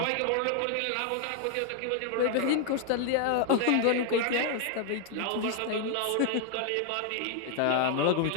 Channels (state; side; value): different; both; correlation 0.00